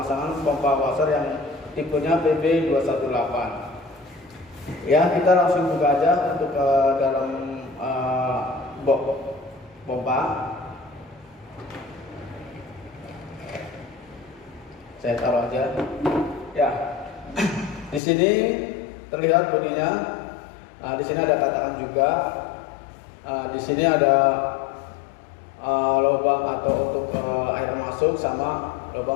pompa Wasser yang tipenya PB218. Ya, kita langsung buka aja untuk dalam box pompa. Saya taruh aja. Ya, di sini terlihat bodinya. Di sini ada katakan juga. Di sini ada lubang atau untuk air masuk sama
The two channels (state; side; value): drops out; right; at 18.0 s